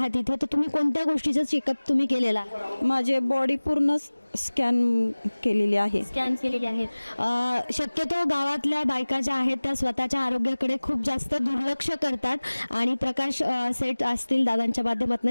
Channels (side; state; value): both; inverted; correlation -1.00